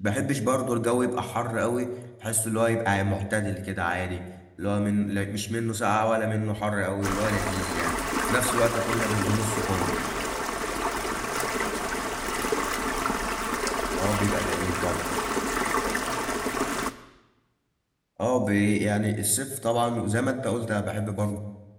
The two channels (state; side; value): identical; both; correlation 1.00